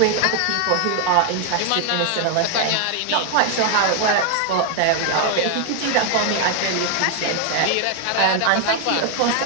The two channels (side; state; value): both; different; correlation 0.00